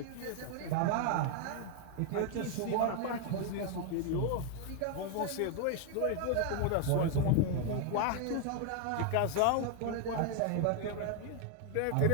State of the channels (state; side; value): different; both; correlation 0.00